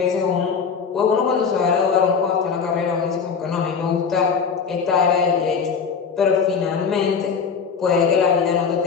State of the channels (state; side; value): quieter; right; 6.0 dB